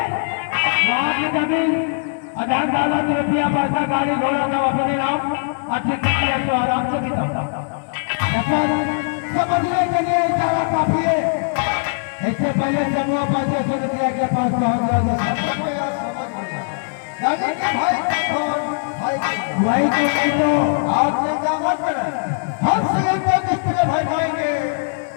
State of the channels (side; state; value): right; silent; digital silence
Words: वहाँ की जमीन अधार दौलत रुपया पैसा गाड़ी घोड़ा सब अपने नाम अच्छे तरीके से आराम से बिताता। समझने के लिए इशारा काफी है। इससे पहले समूह पैसे सोनिया के पास पहुंच गया। वही तो आप चिंता मत करें, हम श्रीलंका किसके भाई पाएंगे